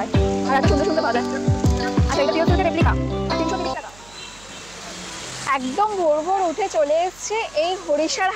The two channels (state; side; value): noise; right; hum, 24 dB below the sound